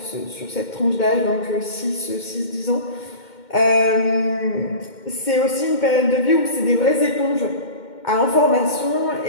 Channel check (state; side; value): late; right; 2.1 ms